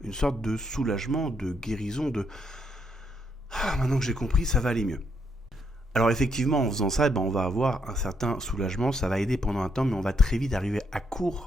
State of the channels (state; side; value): normal; both; correlation 0.76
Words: une sorte de soulagement, de guérison, de « Ah, maintenant que j'ai compris, ça va aller mieux ». Alors effectivement, en faisant ça, on va avoir un certain soulagement, ça va aider pendant un temps, mais on va très vite arriver à